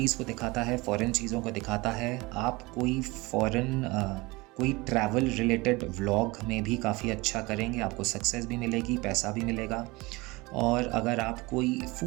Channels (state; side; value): quieter; left; 23.2 dB